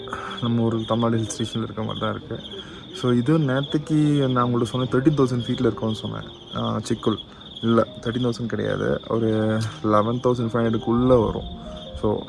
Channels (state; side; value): identical; both; correlation 1.00